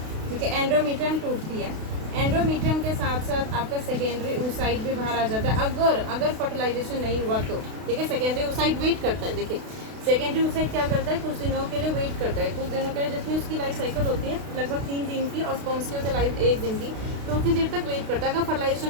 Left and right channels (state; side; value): late; left; 32 ms